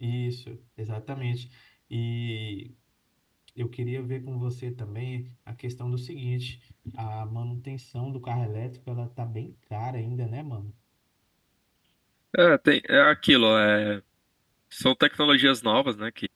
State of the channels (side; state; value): both; identical; correlation 1.00